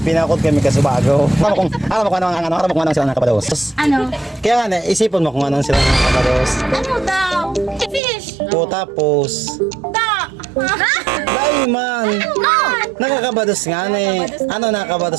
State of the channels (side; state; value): left; drops out; at 8.0 s